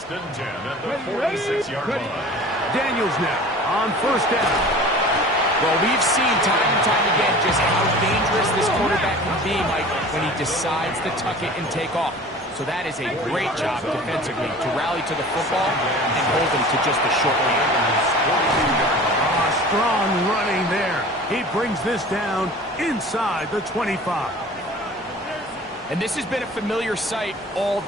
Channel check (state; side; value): normal; both; correlation 0.42